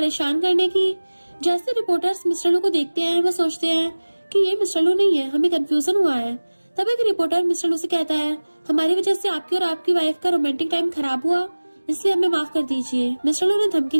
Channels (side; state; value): both; inverted; correlation -1.00